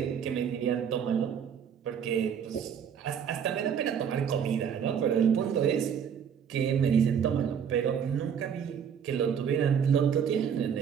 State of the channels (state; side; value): quieter; left; 7.8 dB